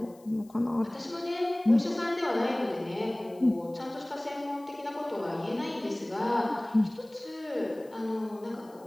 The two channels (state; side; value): noise; left; hiss, 28 dB below the sound